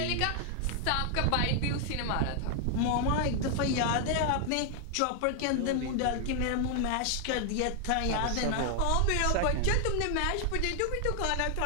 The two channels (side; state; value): both; different; correlation 0.00